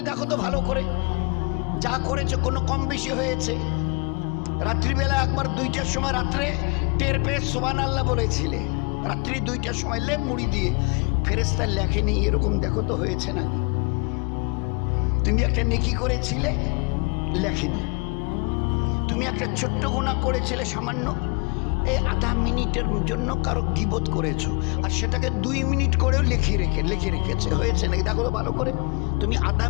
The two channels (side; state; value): right; quieter; 34.7 dB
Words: দেখো তো ভালো করে যা করেছে কোনো কম বেশি হয়েছে। রাত্রিবেলা একবার 2টার সময় রাত্রে টের পেয়ে সুবহানাল্লাহ বলেছিলে, রাত্রি 2টার সময় লেপ মুড়ি দিয়ে। ফেরেশতা লেখেনি এরকম, দেখো তো হয়েছে নাকি। তুমি একটা নেকি করেছিলে, লেখেনি। তুমি একটা ছোট্ট গুনাহ করেছিলে সামান্য, এই আধা মিনিটের জন্য কারো গীবত করেছো, আর সেটাকে 2 মিনিট করেও লিখে রেখেছে, হয়েছে নাকি দেখো তো ভালো করে। তুমি আধা